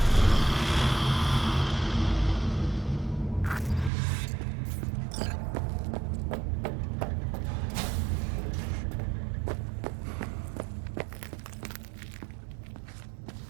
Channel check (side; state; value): left; drops out; at 3.9 s